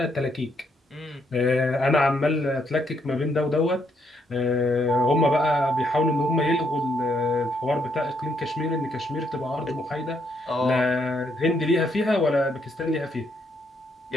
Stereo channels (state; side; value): normal; both; correlation 0.74